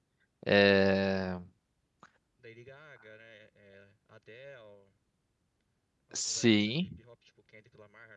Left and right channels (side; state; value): both; identical; correlation 1.00